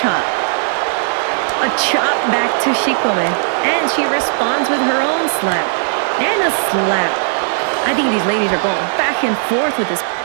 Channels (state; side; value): silent; left; digital silence